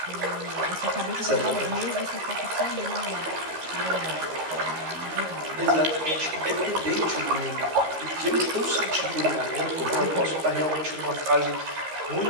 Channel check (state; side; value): late; left; 13 ms